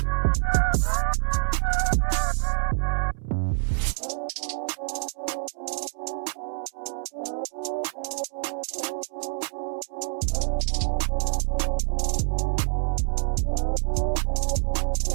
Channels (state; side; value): silent; left; 61 dB below the other